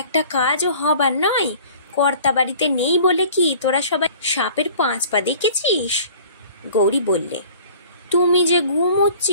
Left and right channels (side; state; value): both; inverted; correlation -0.48